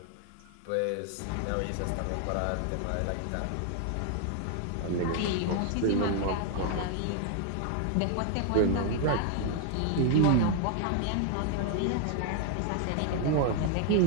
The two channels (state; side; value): different; both; correlation 0.00